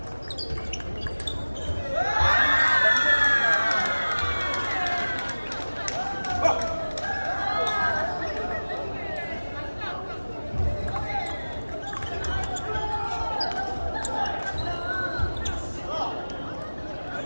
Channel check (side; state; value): both; inverted; correlation -1.00